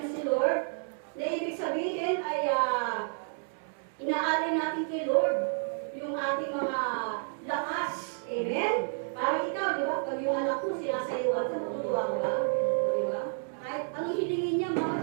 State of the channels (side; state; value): left; silent; digital silence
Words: si Lord, na ibig sabihin ay inaalay natin kay Lord yung ating mga lakas. Amen? Parang ikaw, di ba? Pag yung anak mo sinasayawan ka, matutuwa ka ba? Di ba? Kahit anong hilingin niya, Mama